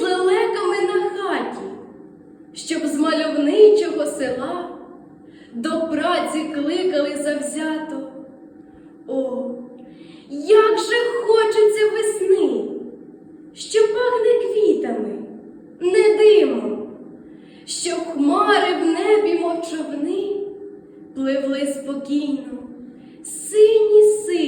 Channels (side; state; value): both; identical; correlation 1.00